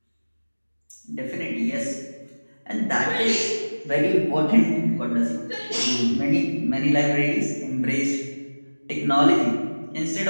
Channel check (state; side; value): inverted; both; correlation -1.00